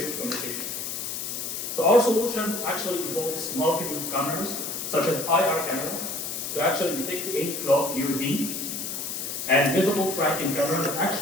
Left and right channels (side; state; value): left; noise; hiss, 4 dB below the sound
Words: of communication. So our solution actually involves multiple cameras, such as IR camera, to actually detect any clock UV, and visible tracking camera that